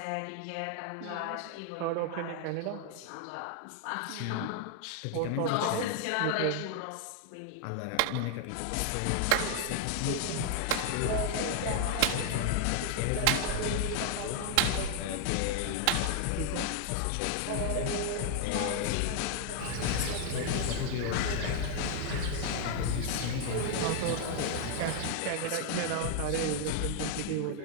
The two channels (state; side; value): different; both; correlation 0.00